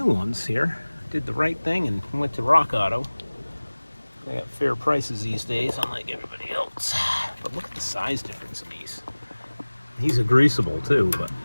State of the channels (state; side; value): inverted; both; correlation -1.00